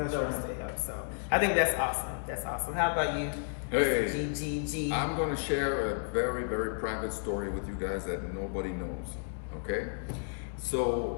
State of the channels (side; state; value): right; silent; 56 dB below the other